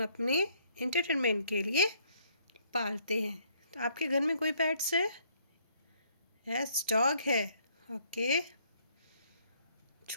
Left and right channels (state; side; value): inverted; both; correlation -0.66